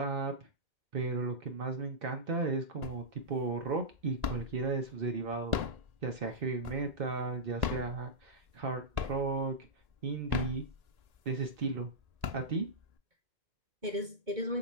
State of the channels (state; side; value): late; left; 1.8 ms